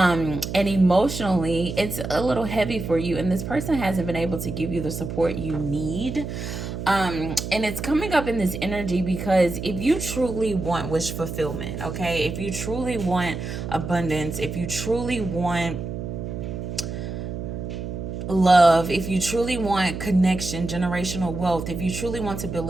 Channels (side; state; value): right; noise; hum, 6 dB below the sound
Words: emotionally, it's a little heavy for you. And this person hasn't been able to give you the support you need. And it's coming up in this energy because if you truly want wish fulfillment, okay? If you truly want abundance, if you truly want love, if you truly want connection, generational wealth, if you truly want to build